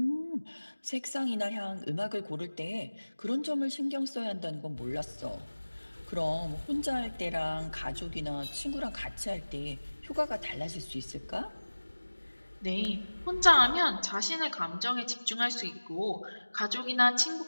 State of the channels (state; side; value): inverted; both; correlation -1.00